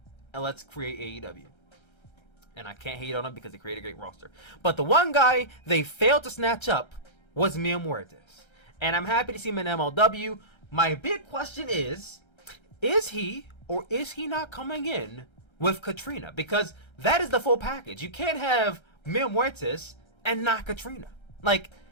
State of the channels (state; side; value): late; right; 1.3 ms